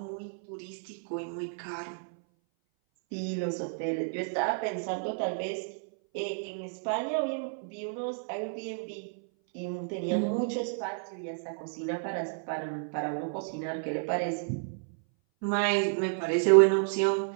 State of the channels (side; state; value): left; silent; 57 dB below the other